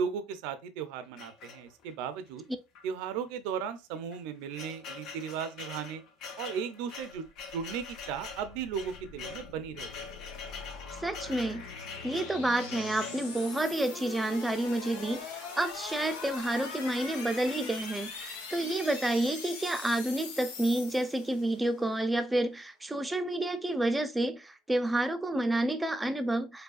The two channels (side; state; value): both; normal; correlation 0.79